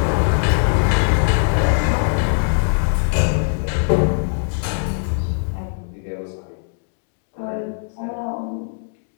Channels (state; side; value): silent; right; digital silence